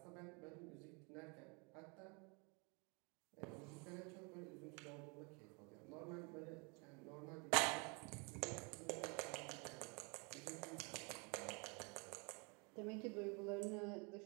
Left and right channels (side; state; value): left; quieter; 32.1 dB